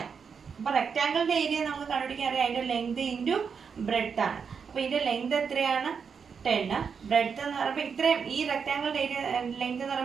അപ്പോൾ റെക്റ്റാങ്കിളിൻ്റെ ഏരിയ നമുക്ക് കണ്ടുപിടിക്കാൻ അറിയാം, അതിൻ്റെ ലെങ്ത് ഇൻറ്റു ബ്രെഡ്ത്ത് ആണ്. അപ്പോൾ ഇതിൻ്റെ ലെങ്ത് എത്രയാണ്, 10. ബ്രെഡ്ത്ത് എന്ന് പറയുമ്പോൾ ഇത്രയും, ഈ റെക്റ്റാങ്കിളിൻ്റെ ഏരിയ ലെങ്ത് എന്ന്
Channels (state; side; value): quieter; left; 6.2 dB